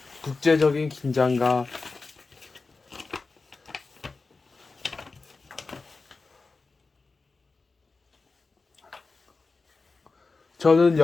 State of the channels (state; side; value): quieter; right; 4.0 dB